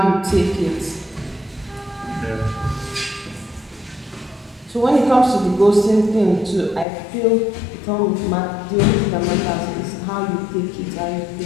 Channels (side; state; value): right; drops out; at 6.9 s